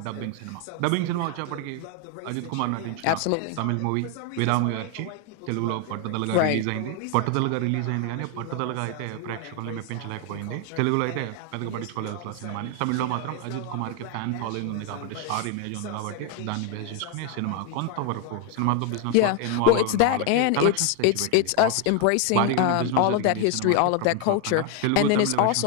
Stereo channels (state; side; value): different; both; correlation 0.01